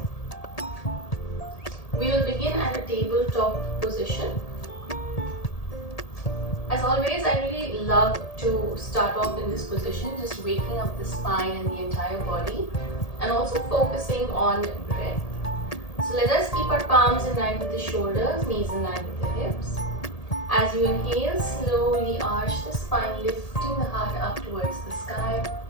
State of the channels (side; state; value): right; late; 1.8 ms